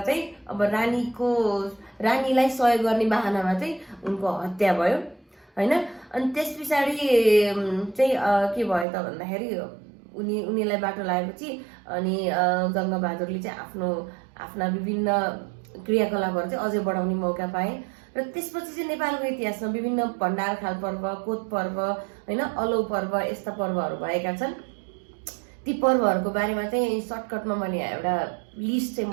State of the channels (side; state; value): left; drops out; at 8.8 s